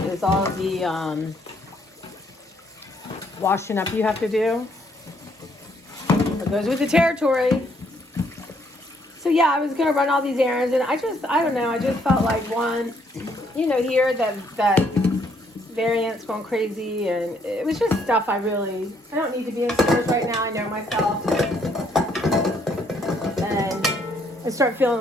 Is all the washing up you have to do. It goes with the territory. So yeah, I was gonna run all these errands, and I don't know, I just felt like one, you know, here that variant's going crazy, and it was just stuff I don't need to be in stores right now. I know myself, and I start feeling a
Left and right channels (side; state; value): both; normal; correlation 0.69